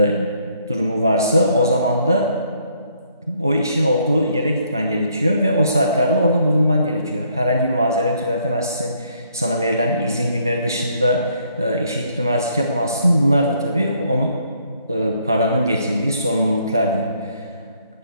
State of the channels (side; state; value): both; inverted; correlation -0.68